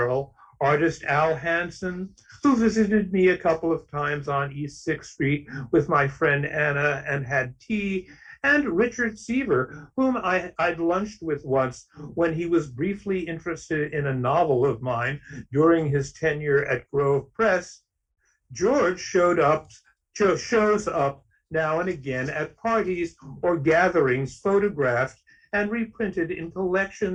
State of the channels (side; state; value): both; identical; correlation 1.00